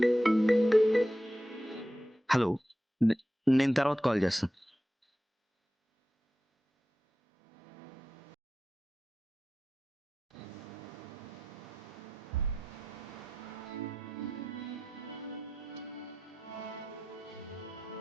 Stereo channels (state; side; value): normal; both; correlation 0.91